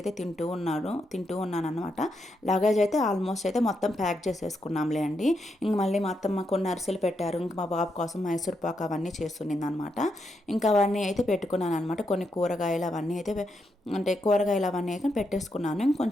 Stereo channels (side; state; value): both; normal; correlation 0.82